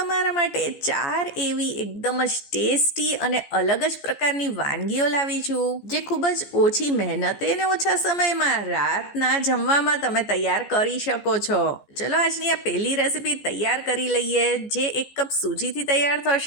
માટે 4 એવી એકદમ જ ટેસ્ટી અને અલગ જ પ્રકારની વાનગીઓ લાવી છું, જે ખૂબ જ ઓછી મહેનતે અને ઓછા સમયમાં રાતના જમવામાં તમે તૈયાર કરી શકો છો. ચલો આજની આ પહેલી રેસીપી તૈયાર કરી લઈએ, જે 1 કપ સૂજીથી તૈયાર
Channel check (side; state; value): right; late; 14 ms